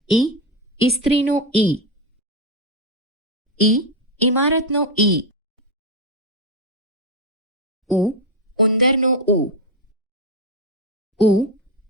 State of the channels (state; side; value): normal; both; correlation 0.09